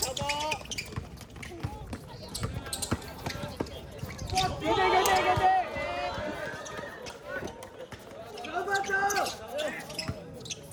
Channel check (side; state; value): both; identical; correlation 1.00